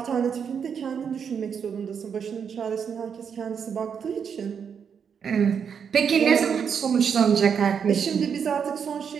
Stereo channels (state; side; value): quieter; left; 7.1 dB